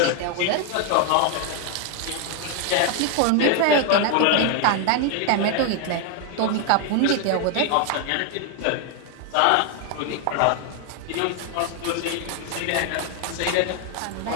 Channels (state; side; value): different; both; correlation 0.01